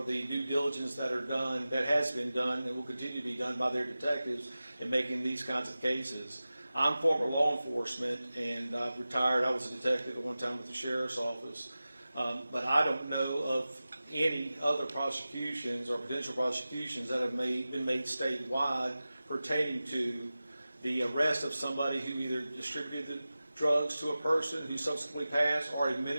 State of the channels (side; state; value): both; inverted; correlation -0.95